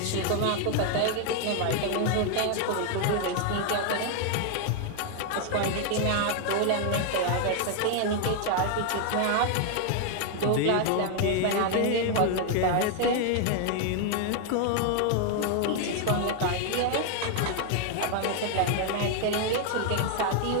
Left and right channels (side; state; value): both; different; correlation 0.00